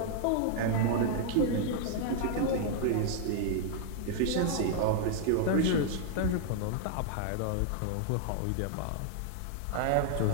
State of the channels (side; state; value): both; different; correlation 0.00